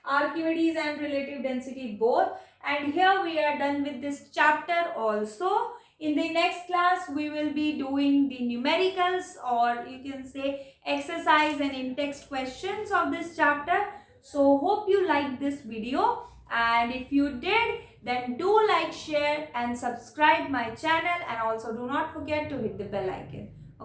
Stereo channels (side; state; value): both; identical; correlation 1.00